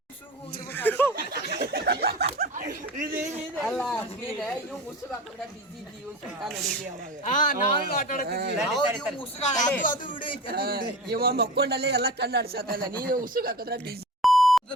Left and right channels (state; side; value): normal; both; correlation 0.33